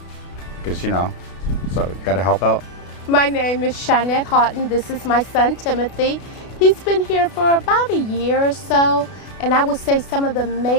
because, you know, so you got to help out. My name is Shanette Houghton. This is my son, Timothy. He's been here for about a year or so, and I would say some of the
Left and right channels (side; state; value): right; late; 32 ms